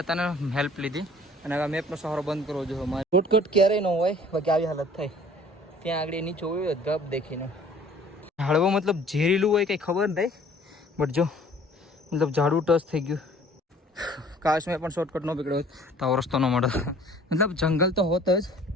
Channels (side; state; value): both; normal; correlation 0.52